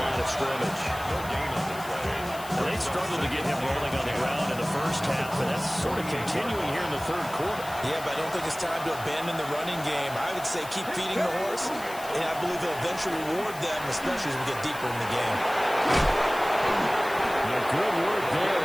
of scrimmage. No gain on the play. They They struggled to get him rolling on the ground in the first half, but that's sort of continuing here in the third quarter. Yeah, but I don't think it's time to abandon the running game. I would say keep feeding the horse, and I believe he'll eventually reward them, especially as we get deeper in the game. Yeah, good work there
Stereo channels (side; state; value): left; noise; hiss, 15 dB below the sound